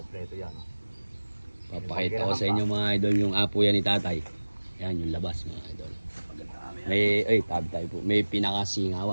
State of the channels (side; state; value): both; inverted; correlation -1.00